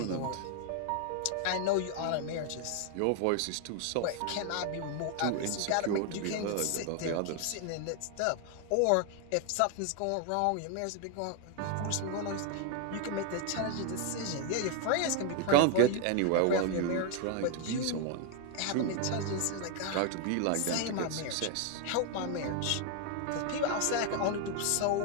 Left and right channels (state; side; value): different; both; correlation 0.00